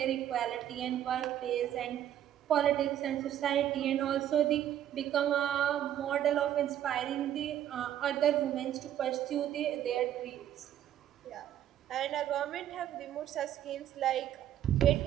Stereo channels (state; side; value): quieter; left; 11.2 dB